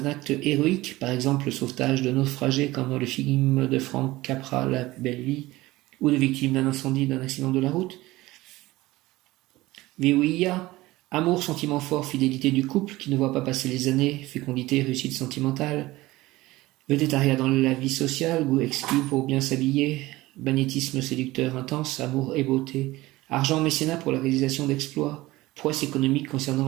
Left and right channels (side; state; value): left; quieter; 18.6 dB